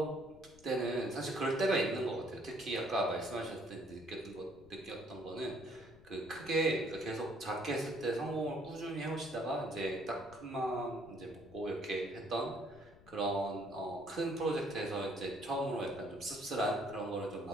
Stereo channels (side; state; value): left; noise; rumble, 23 dB below the sound